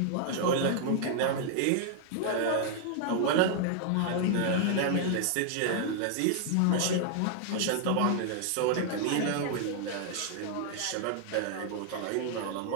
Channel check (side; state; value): both; different; correlation 0.00